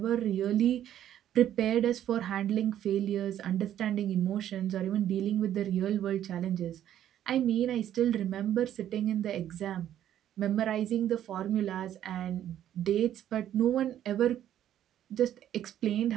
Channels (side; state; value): left; quieter; 11.2 dB